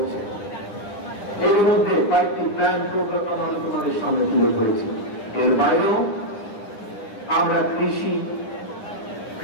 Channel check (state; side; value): late; right; 9.9 ms